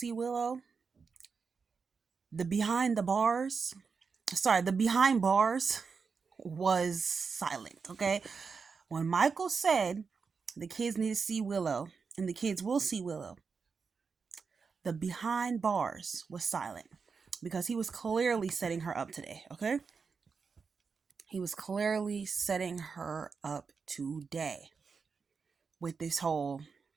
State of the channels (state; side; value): quieter; left; 5.3 dB